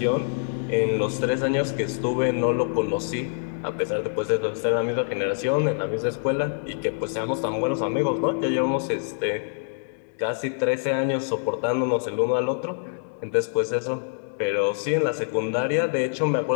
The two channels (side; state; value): right; silent; digital silence